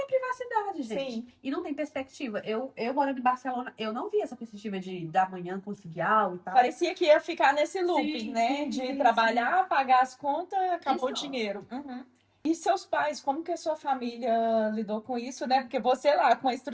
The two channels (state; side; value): identical; both; correlation 1.00